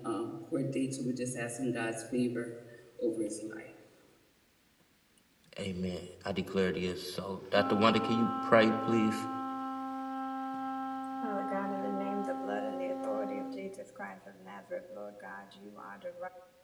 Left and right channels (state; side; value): identical; both; correlation 1.00